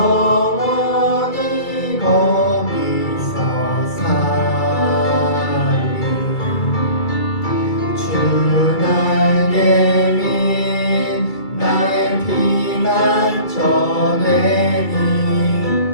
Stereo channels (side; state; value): right; late; 2.3 ms